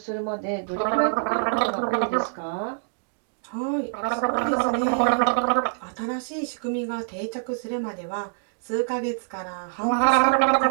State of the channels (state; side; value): silent; left; digital silence